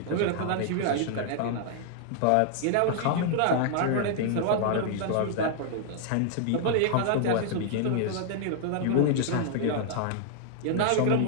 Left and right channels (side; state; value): both; different; correlation -0.01